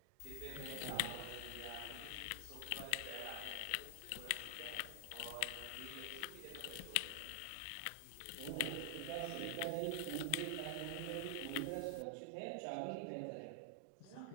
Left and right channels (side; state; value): both; different; correlation 0.00